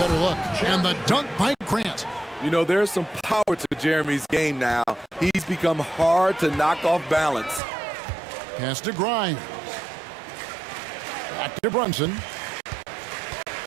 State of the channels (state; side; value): drops out; left; at 7.6 s